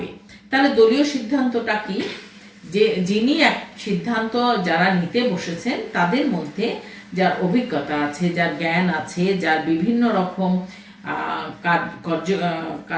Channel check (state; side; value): identical; both; correlation 1.00